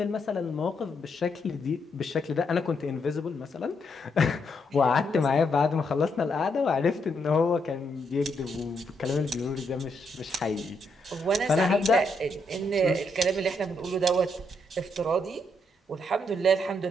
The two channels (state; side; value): normal; both; correlation 0.77